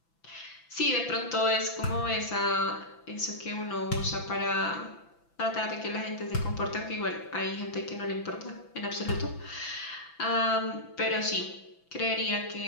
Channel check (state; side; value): late; right; 6.0 ms